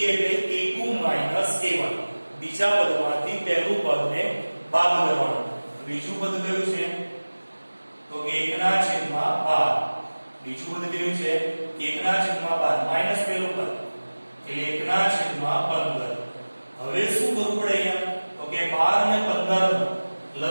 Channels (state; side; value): inverted; both; correlation -1.00